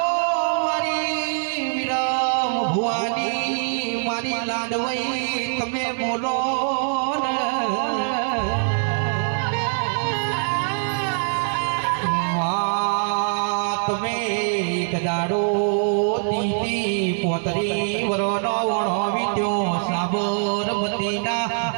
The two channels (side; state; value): left; silent; digital silence